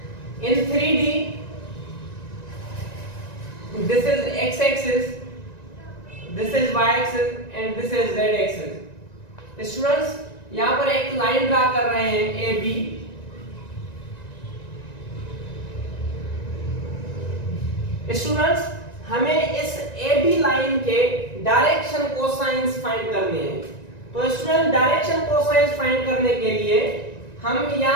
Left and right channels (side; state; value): right; late; 1.9 ms